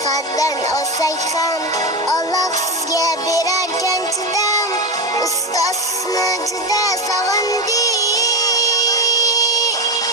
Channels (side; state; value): both; normal; correlation 0.17